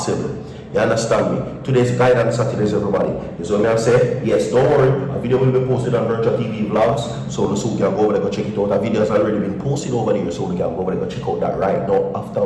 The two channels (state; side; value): identical; both; correlation 1.00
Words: You understand me? Today's guidance Saturdays, everybody. Is what I say. Yes, don't worry. A video will be posted on Virtual TV Vlogs. So you can go over there, go check it out. A video has already been posted over there. So you can go over there, go check out that right now. After